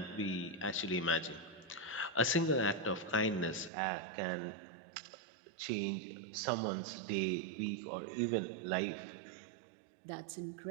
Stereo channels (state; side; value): drops out; left; at 3.7 s